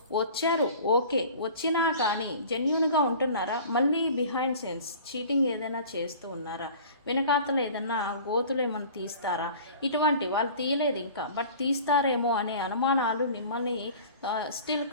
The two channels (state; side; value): inverted; both; correlation -0.43